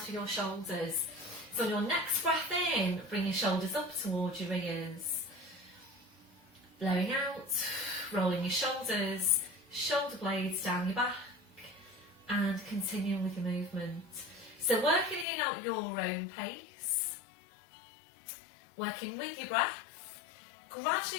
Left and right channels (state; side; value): drops out; right; at 15.2 s